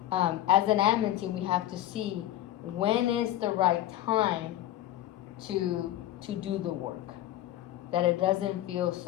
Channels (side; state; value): right; quieter; 13.4 dB